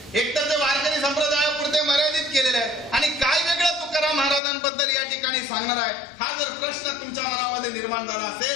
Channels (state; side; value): drops out; right; at 4.4 s